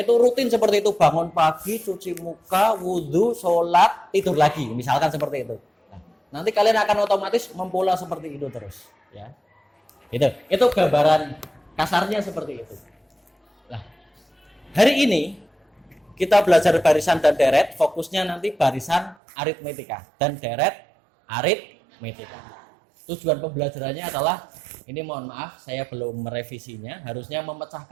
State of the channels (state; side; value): drops out; left; at 19.2 s